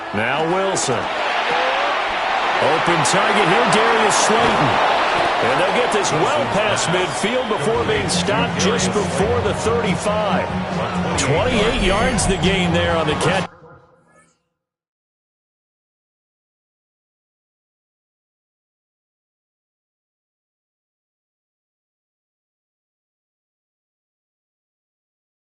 Now Wilson. Open target here, Darius Slayton. And they'll get this well past midfield before being stopped just before the 35. 28 yards the gain there on the catch.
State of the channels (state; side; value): identical; both; correlation 1.00